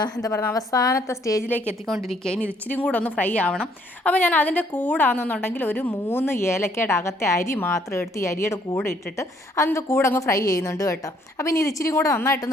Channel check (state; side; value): normal; both; correlation 0.66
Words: എന്താ പറയുക അവസാനത്തെ സ്റ്റേജിലേക്ക് എത്തിക്കൊണ്ടിരിക്കുക. ഇനി ഇത് ഇച്ചിരി കൂടെ ഒന്ന് ഫ്രൈ ആവണം. അപ്പോൾ ഞാൻ അതിൻ്റെ കൂടാണെന്നുണ്ടെങ്കിൽ ഒരു 3 ഏലക്കയുടെ അകത്തെ അരി മാത്രം എടുത്ത് ഈ അരിയുടെ കൂടെ ഇട്ടിട്ട് അതിൻ്റെ കൂടെ അങ്ങ് ഫ്രൈ ചെയ്യുന്നുണ്ട് കേട്ടോ. അപ്പോൾ ഇനി ഇത് ഇച്ചിരി കൂടെ